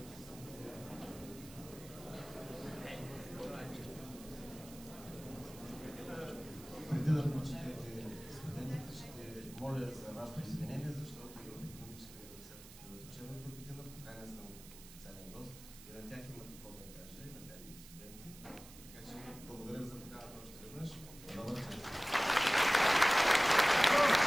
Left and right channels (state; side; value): noise; right; hiss, 17 dB below the sound